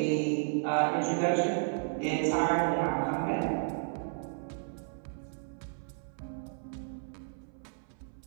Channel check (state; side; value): silent; left; 56 dB below the other